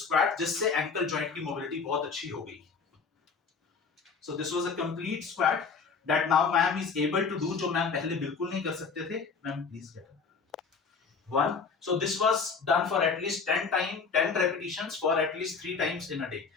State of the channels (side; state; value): right; quieter; 5.3 dB